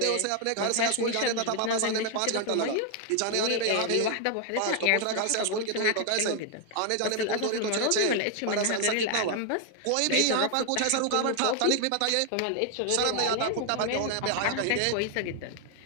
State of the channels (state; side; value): different; both; correlation 0.00